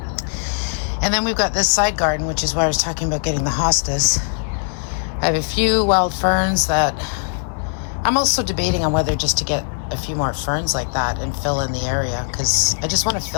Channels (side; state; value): right; silent; 66 dB below the other